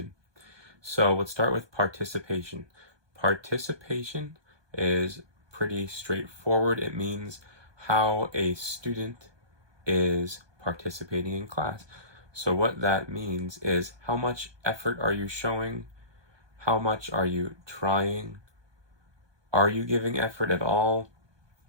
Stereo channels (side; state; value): left; late; 1.2 ms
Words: So let's start with participation. Participation is pretty straightforward. It means how a student is participating in class. So what that means is how much effort are you showing? How much are you trying? Are you giving effort at all?